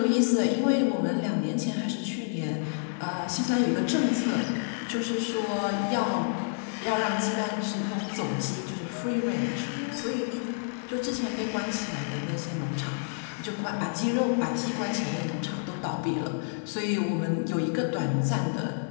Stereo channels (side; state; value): right; silent; digital silence